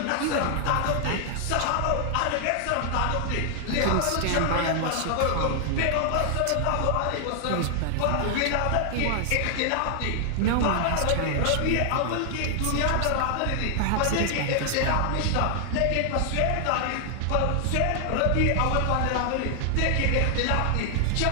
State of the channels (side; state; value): both; different; correlation 0.00